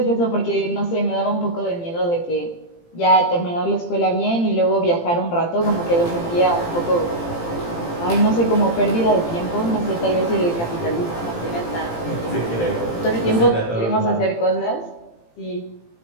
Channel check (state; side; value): late; right; 18 ms